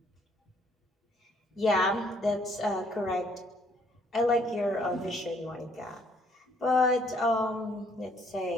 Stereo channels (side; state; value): both; normal; correlation 0.65